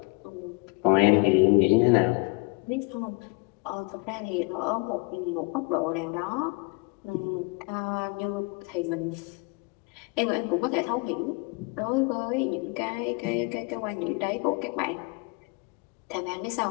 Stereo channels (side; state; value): right; quieter; 29.2 dB